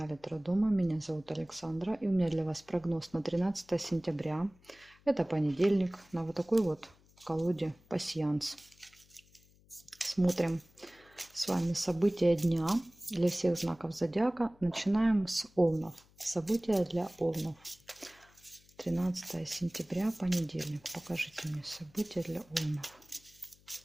Таро Дома. Меня зовут Александра. И у меня для вас прогноз на 13 сентября. Это понедельник. На вот такой вот колоде пасьянс. Смотрим с вами события дня для всех знаков зодиака. Начинаем с Овнов. События для Овнов. 13 сентября, понедельник. Покажите мне события для Овнов.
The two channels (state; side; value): noise; left; hum, 29 dB below the sound